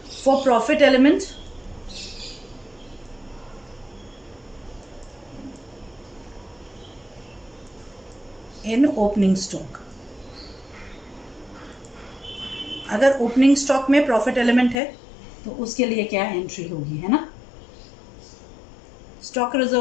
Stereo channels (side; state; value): right; drops out; at 14.8 s